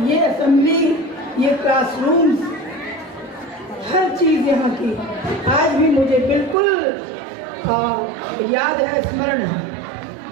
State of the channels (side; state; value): left; drops out; at 6.6 s